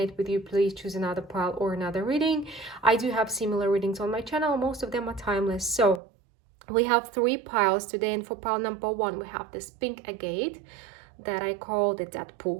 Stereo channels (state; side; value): drops out; left; at 6.0 s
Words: with you, please choose another pile or another reading. I do have similar readings on my channel. Most of them are timeless. So we have three piles today, and for pile number one we have this pink agate that I call the